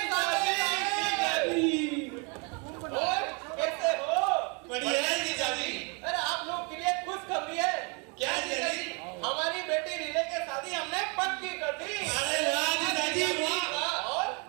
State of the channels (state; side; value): quieter; left; 33.2 dB